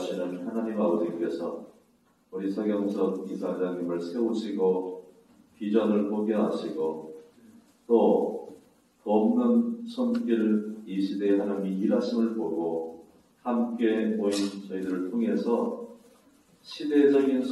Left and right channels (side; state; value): both; identical; correlation 1.00